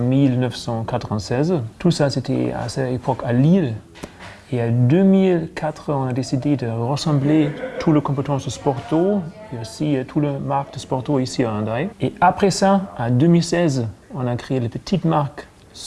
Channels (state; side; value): identical; both; correlation 1.00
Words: Tout ça, c'était à cette époque à Lille. Et en 2004, on a décidé de rassembler toutes les compétences de Sporto et aussi toutes les marques de Sporto ici à Hendaye. Et après ça, en 2016, on a créé la petite marque